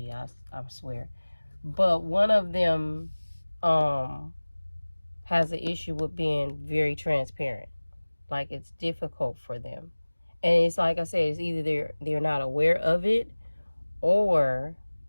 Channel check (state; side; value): inverted; both; correlation -1.00